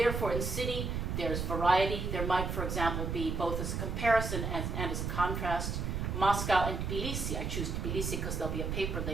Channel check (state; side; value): noise; right; rumble, 2 dB below the sound